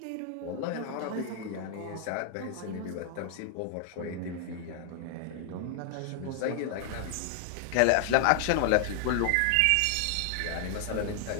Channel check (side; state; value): both; different; correlation 0.00